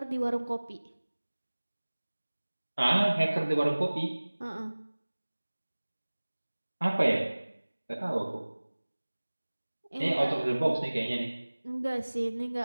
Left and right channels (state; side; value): inverted; both; correlation -1.00